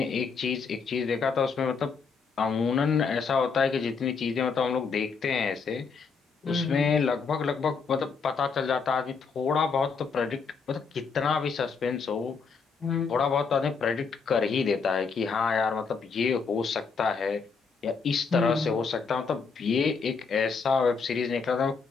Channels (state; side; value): quieter; right; 5.3 dB